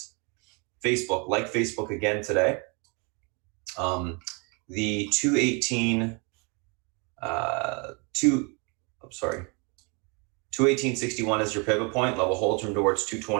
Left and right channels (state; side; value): quieter; left; 32.3 dB